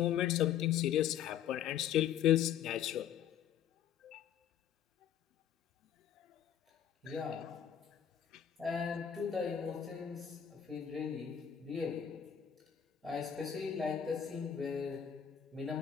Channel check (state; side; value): quieter; right; 9.2 dB